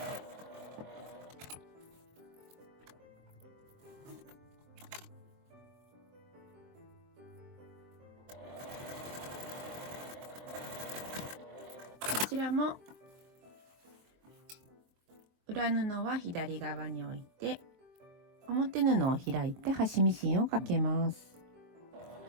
こちらも裏布は左側に置いて表布を開いて端ミシンをかけます。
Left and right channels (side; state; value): left; late; 23 ms